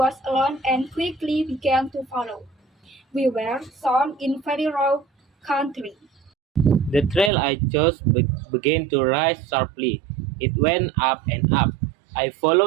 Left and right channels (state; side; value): drops out; left; at 7.3 s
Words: alone and quickly began to follow. We were sown in very raw country. The trail I chose began to rise sharply. It went up and up. I